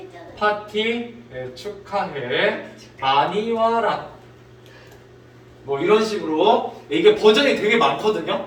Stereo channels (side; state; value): both; identical; correlation 1.00